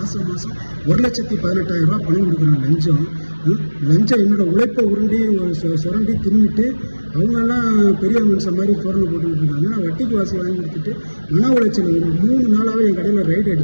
1,18,000 ரூபா பணம் கொடுக்குறேன் லஞ்சம். என்னோட உழைப்பை உருண்டி சுரண்டி தின்னுட்டு அவங்கெல்லாம் பெரிய மனுஷன் மாதிரி தோரணை போட்டுக்கிட்டு இருக்காங்க. நான் வட்டிக்கு வாசி வாங்கி கொடுத்துட்டு மன உளைச்சல் ஒரு 3 நாளாகவே என் கடையில் ரைடு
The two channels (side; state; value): both; inverted; correlation -1.00